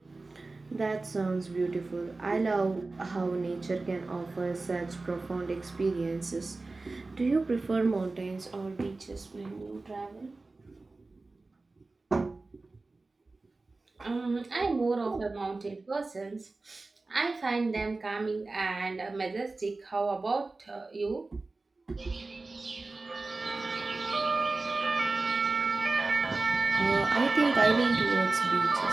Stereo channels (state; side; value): quieter; left; 3.5 dB